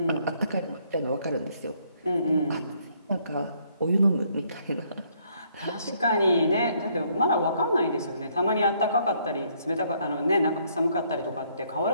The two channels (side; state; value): both; inverted; correlation -0.68